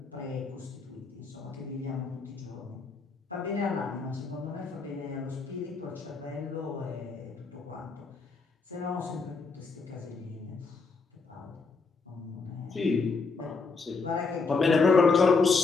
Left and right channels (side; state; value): right; quieter; 4.4 dB